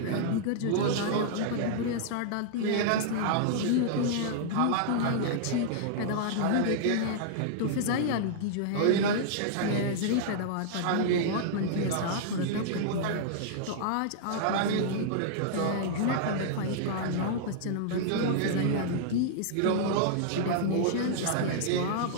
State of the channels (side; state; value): both; different; correlation -0.02